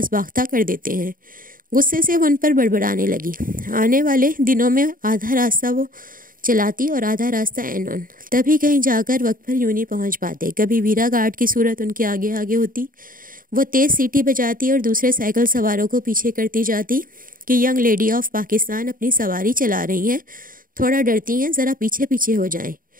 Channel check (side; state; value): left; late; 0.40 ms